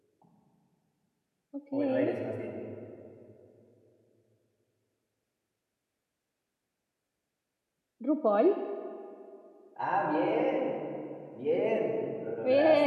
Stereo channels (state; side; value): identical; both; correlation 1.00